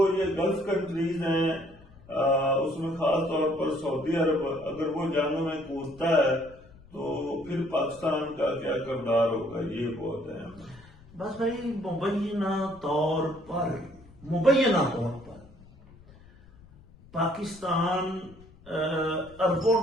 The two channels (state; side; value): noise; left; rumble, 23 dB below the sound